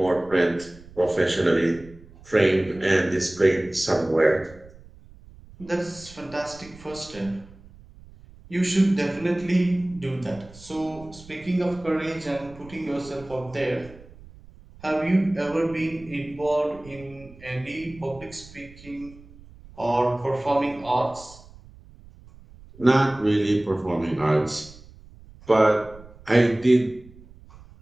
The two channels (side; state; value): right; noise; rumble, 21 dB below the sound